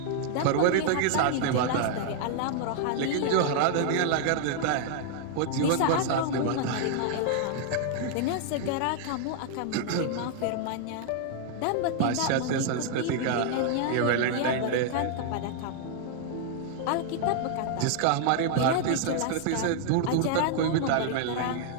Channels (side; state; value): both; different; correlation -0.01